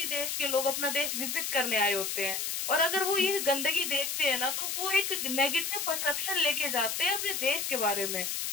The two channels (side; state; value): left; noise; hiss, 2 dB below the sound